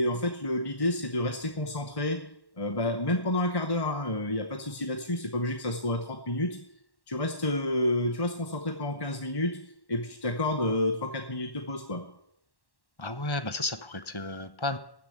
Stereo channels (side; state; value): right; late; 1.1 ms